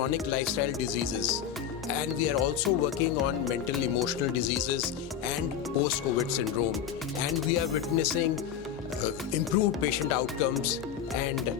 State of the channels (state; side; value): quieter; right; 8.8 dB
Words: lifestyle diseases. And we are also working on mental emotional diseases and post-COVID syndrome. And we are witnessing improved patient outcomes, and